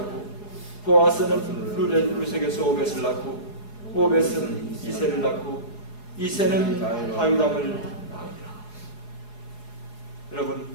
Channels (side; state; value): right; late; 4.8 ms